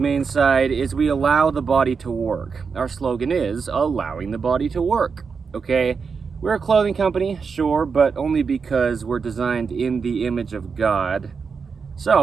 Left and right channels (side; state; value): left; quieter; 5.5 dB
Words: side is we allow the body to work. Our slogan is allowing the body to work. Okay, we're a clothing company, sure, but only because we're designed in the image of God.